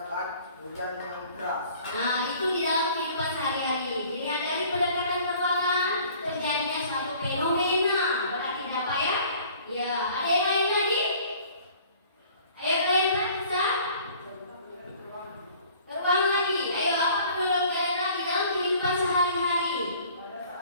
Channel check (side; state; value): both; inverted; correlation -0.52